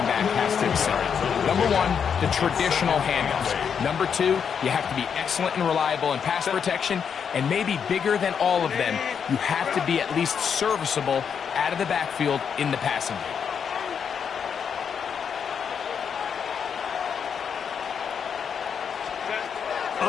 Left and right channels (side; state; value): right; quieter; 7.1 dB